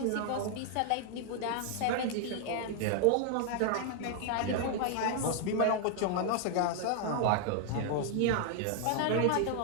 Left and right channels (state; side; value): different; both; correlation 0.00